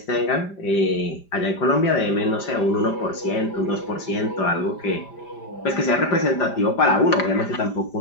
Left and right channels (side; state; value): right; late; 5.0 ms